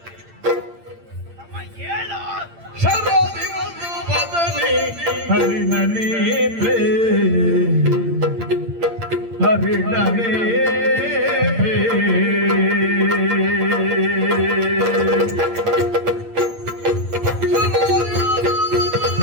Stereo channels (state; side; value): late; left; 8.8 ms